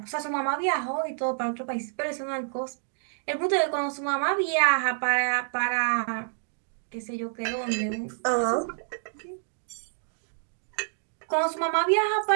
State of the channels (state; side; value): silent; left; digital silence